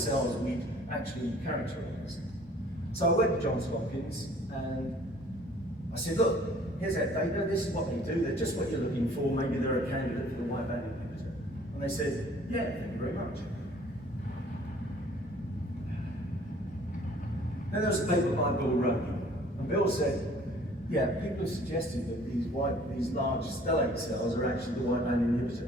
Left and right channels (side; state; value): both; normal; correlation 0.54